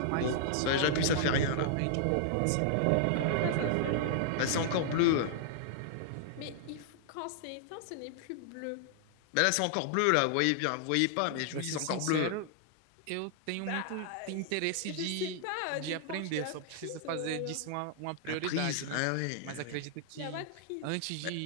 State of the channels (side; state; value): both; different; correlation -0.01